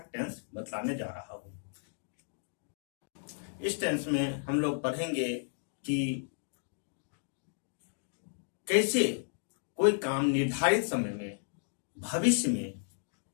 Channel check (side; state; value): right; silent; digital silence